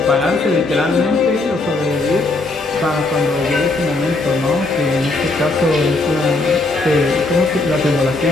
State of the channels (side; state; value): right; quieter; 3.2 dB